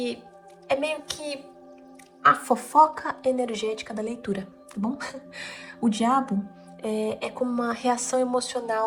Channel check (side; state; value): both; identical; correlation 1.00